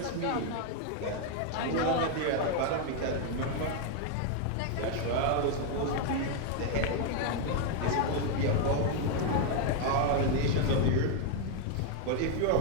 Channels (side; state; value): both; different; correlation 0.00